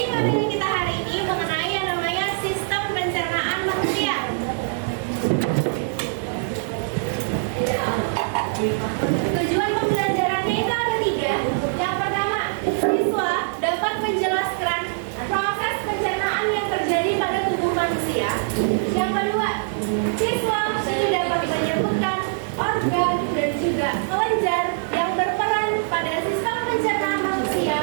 materi kita hari ini mengenai yang namanya sistem pencernaan manusia. Tujuan pembelajarannya itu ada 3. Yang pertama, siswa dapat menjelaskan proses pencernaan yang terjadi pada tubuh manusia. Yang kedua, siswa ini dapat menyebutkan organ dan juga kelenjar yang berperan pada sistem pencernaan manusia.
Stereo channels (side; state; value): left; silent; 63 dB below the other